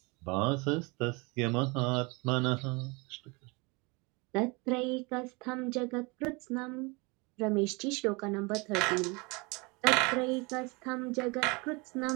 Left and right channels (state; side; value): quieter; left; 27.8 dB